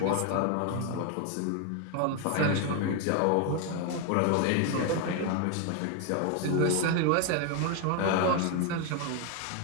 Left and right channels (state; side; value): different; both; correlation 0.01